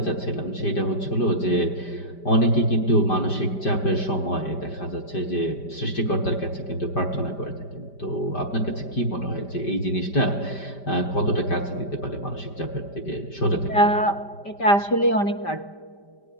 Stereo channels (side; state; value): right; late; 5.1 ms